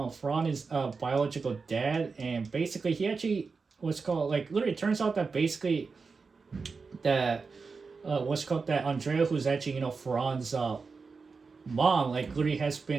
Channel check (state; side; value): quieter; left; 4.7 dB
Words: is biological dad, and basically he actually literally it turns out that basically that that Andrea, who's actually Farhan's mom, literally has